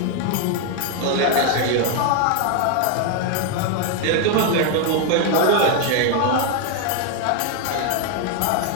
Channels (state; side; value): different; both; correlation 0.01